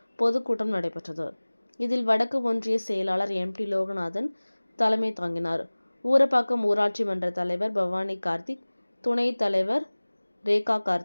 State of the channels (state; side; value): inverted; both; correlation -1.00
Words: பொதுக்கூட்டம் நடைபெற்றது. இதில் வடக்கு ஒன்றிய செயலாளர் எம்.டி. லோகநாதன் தலைமை தாங்கினார். ஊரப்பாக்கம் ஊராட்சி மன்ற தலைவர் பவானி கார்த்திக், துணைத் தலைவர் ரேகா